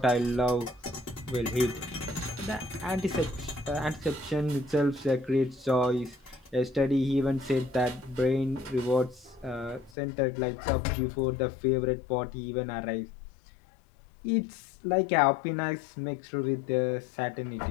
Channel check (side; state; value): right; drops out; at 9.9 s